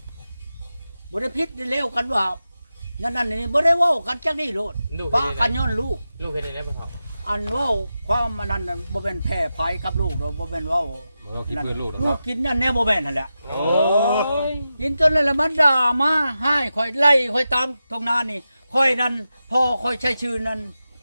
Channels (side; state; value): both; inverted; correlation -0.91